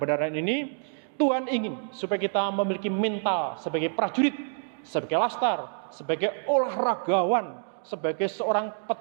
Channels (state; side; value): silent; left; digital silence